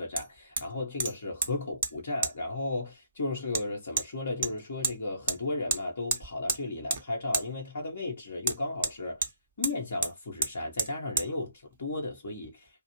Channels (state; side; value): inverted; both; correlation -0.68